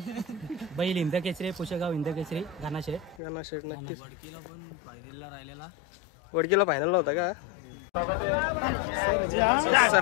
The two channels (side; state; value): right; drops out; at 3.2 s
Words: बैल इंदकेसरी पुशेगाव इंदकेसरी घानाशेठ नक्कीच. वडकीला पण फायनलला राहिलेला. वडकीला फायनलला होता का?